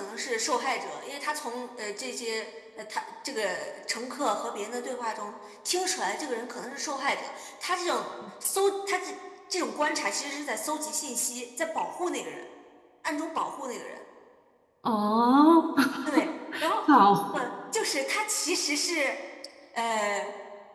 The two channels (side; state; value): both; identical; correlation 1.00